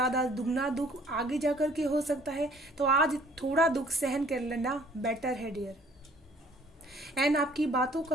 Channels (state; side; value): normal; both; correlation 0.57